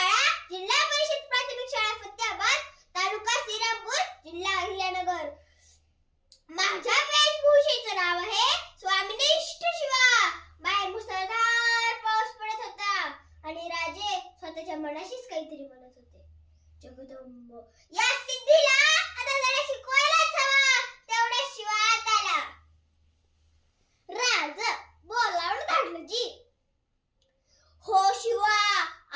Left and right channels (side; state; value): both; identical; correlation 1.00